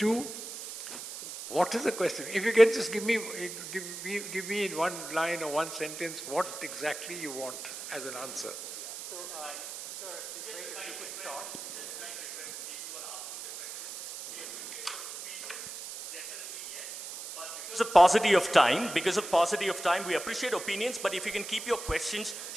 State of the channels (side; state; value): right; noise; hiss, 9 dB below the sound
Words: what is the question? If you can just give me in one line or one sentence what exactly you want as an answer. So, sir, if you could start. Because of paucity of time, we appreciate opinions, but if you can keep your questions